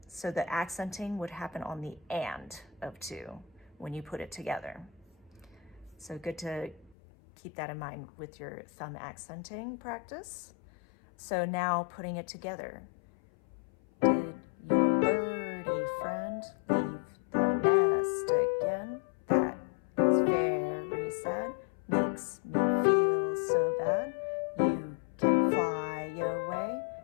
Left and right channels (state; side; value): drops out; right; at 7.0 s